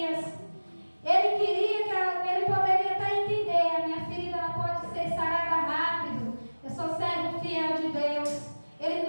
Ele queria que ele poderia até entender: a minha ferida ela pode ser sarada rápido,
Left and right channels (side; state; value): both; inverted; correlation -1.00